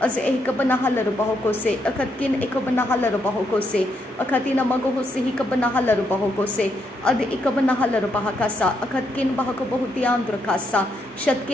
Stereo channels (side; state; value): both; normal; correlation 0.78